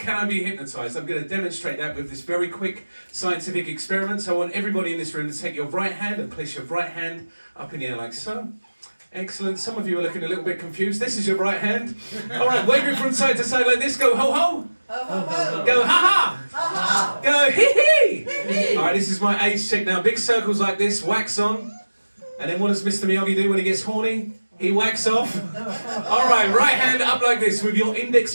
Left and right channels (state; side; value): inverted; both; correlation -1.00